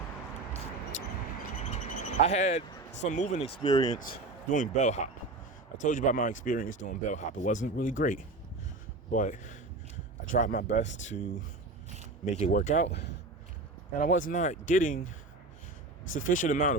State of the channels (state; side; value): quieter; left; 3.1 dB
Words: I had some moving experience doing bellhop. I told you about my experience doing bellhop. It wasn't really great, but I tried my best to make it work out, and I was not getting sufficient amount